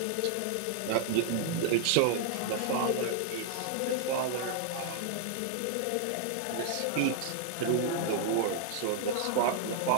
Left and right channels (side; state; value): both; different; correlation -0.01